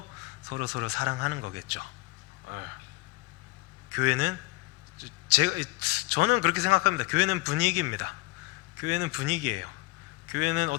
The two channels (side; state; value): right; quieter; 22.2 dB